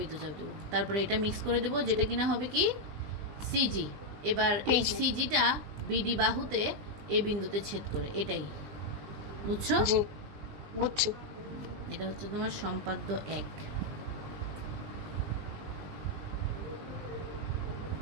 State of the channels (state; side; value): late; left; 20 ms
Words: দেবো, তারপরে এটা মিক্স করে দেবো, যেটা কিনা হবে কি সিজি। এবার এই সিজিটা বিডি বাহুতে এই বিন্দুতে ছেদ করে, এটাই বুঝছো? বুঝছি। এটা হচ্ছে তোমার সম্পাদ্য 1।